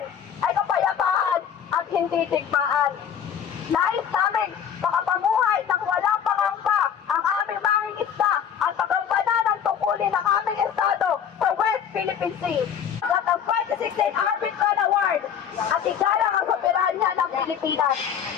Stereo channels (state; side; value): quieter; right; 8.3 dB